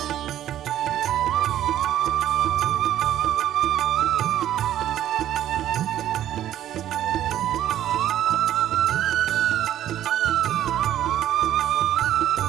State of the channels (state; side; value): quieter; left; 11.8 dB